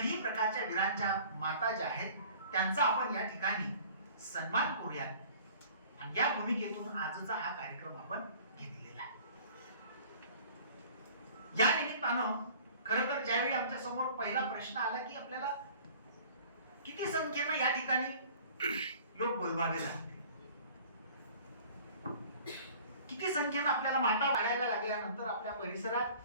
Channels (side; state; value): both; inverted; correlation -0.48